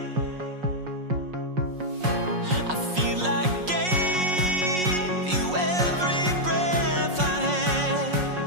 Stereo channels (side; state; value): left; late; 5.5 ms